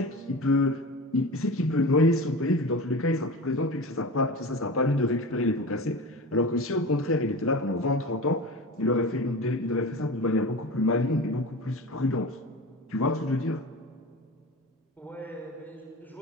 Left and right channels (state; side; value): normal; both; correlation 0.30